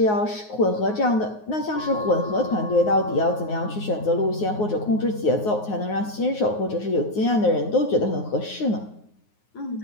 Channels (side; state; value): right; late; 9.5 ms